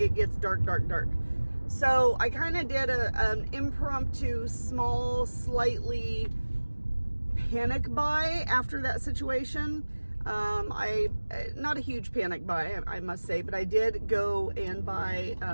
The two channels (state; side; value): inverted; both; correlation -1.00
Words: gets dark. So I kind of did an impromptu, small, slightly panic buy after that situation. Not a huge panic buy, I must say, but I did go and buy